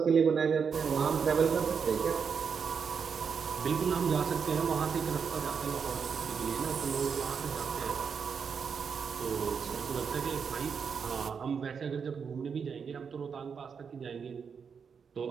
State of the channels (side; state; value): left; quieter; 6.3 dB